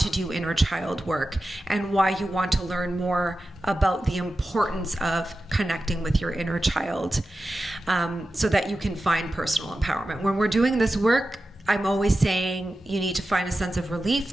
do inner child work, and why you want to learn more about the importance of connecting with your inner child, so that you can find personal empowerment. When we're doing this work, I'm always saying you need to find a sense of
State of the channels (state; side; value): normal; both; correlation 0.92